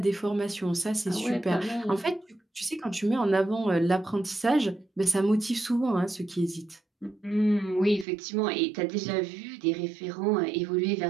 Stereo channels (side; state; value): left; drops out; at 8.1 s